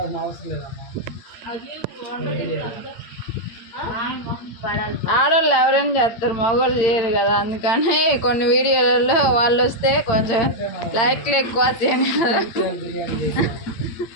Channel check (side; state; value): right; late; 8.8 ms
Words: అవసరం లేదమ్మా ఆడవాళ్ళు ఎవరైనా చేస్తారు మగవాళ్ళు చేయరు కదా అందుకని కొన్ని వీడియోలలో వాళ్ళు వస్తే కొంచెం లైక్లు ఎక్కువ వస్తాయని కదా